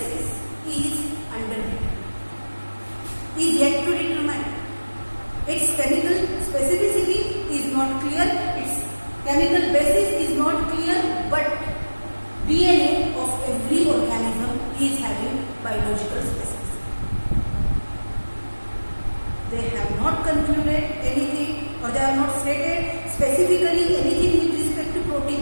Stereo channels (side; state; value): both; inverted; correlation -1.00